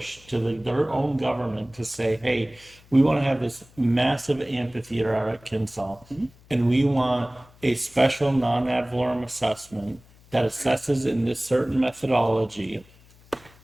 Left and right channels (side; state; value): left; noise; hum, 27 dB below the sound